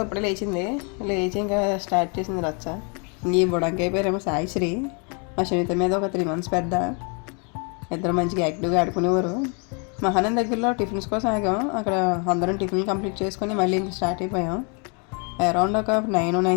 ఇప్పుడే లేచి ఇంకా స్టార్ట్ చేసింది రచ్చ. ఈ బుడంకాయ పేరేమో సాయిశ్రీ. మా శనిత మీద ఒక 3 months పెద్ద. ఇద్దరు మంచిగా యాక్టివ్గా ఆడుకునేవారు. మహానంద దగ్గరలో టిఫిన్స్ కోసం ఆగాం. అక్కడ అందరం టిఫిన్ కంప్లీట్ చేసుకొని మళ్ళీ ఇంకా స్టార్ట్ అయిపోయాం. అరౌండ్ ఒక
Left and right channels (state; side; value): quieter; right; 35.6 dB